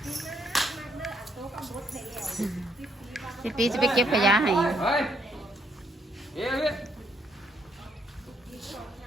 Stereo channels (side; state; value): both; normal; correlation 0.72